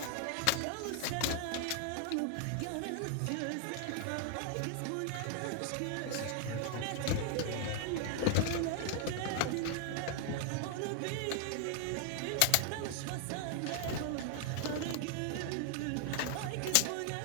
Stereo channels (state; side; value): different; both; correlation 0.00